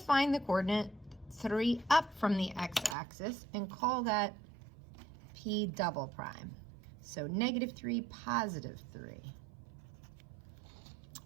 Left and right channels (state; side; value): drops out; left; at 3.0 s